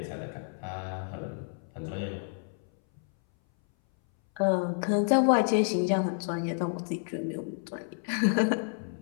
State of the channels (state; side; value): silent; right; 58 dB below the other